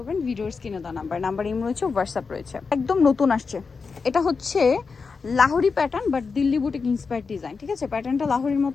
ভিডিওর স্ক্রিনে দেওয়া নাম্বার ইম রয়েছে, হোয়াটসঅ্যাপ রয়েছে। একদম নতুন আসছে, এটা হচ্ছে Lahori pattern but Delhi boutique inspired design. ঠিক আছে, প্যাটার্নটা লাহোরির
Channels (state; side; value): quieter; right; 4.9 dB